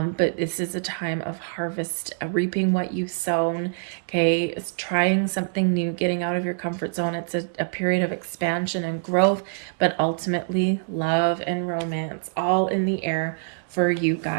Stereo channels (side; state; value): left; silent; digital silence